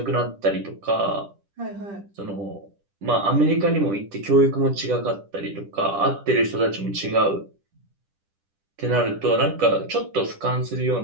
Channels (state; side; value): late; left; 10 ms